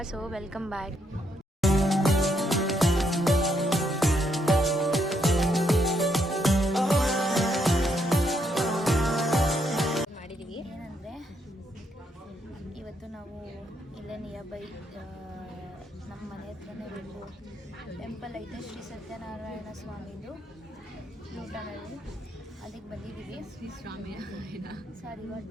So welcome back. ಮಾಡಿದ್ದೀವಿ ಏನಂದರೆ, ಇವತ್ತು ನಾವು ಇಲ್ಲೇ ನಿಯರ್ ಬೈ ನಮ್ಮ ಮನೆ ಹತ್ರನೇ ಒಂದು ಟೆಂಪಲ್ ಐತೆ, ಶ್ರೀ ಸತ್ಯನಾರಾಯಣ ಸ್ವಾಮಿದು ಊಟನಲ್ಲಿ. ಅದಕ್ಕೆ ಬಂದಿದ್ದೀವಿ. ಶ್ರೀ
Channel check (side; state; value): both; normal; correlation 0.76